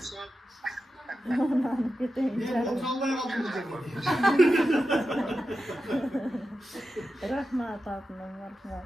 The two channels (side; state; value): both; normal; correlation 0.91